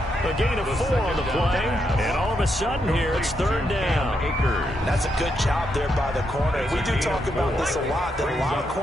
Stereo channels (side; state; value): both; normal; correlation 0.80